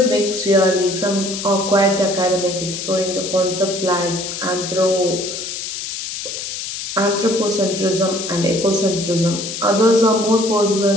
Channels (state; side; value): noise; left; hiss, 6 dB below the sound